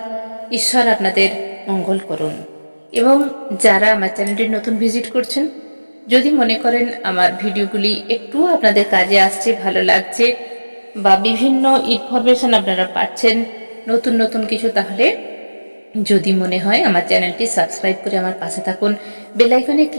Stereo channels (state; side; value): inverted; both; correlation -1.00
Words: ঈশ্বর আপনাদের মঙ্গল করুন। এবং যারা আমার চ্যানেলটি নতুন ভিজিট করছেন, যদি মনে করেন আমার ভিডিওগুলি একটু আপনাদের কাজে আসছে, ভালো লাগছে বা বিভিন্ন ইনফরমেশন আপনারা পাচ্ছেন নতুন নতুন কিছু, তাহলে যদি মনে হয় আমার চ্যানেলটি সাবস্ক্রাইব করে আমার পাশে থাকুন। বেল আইকনে